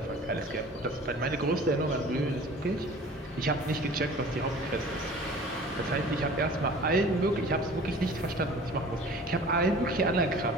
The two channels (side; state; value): both; normal; correlation 0.45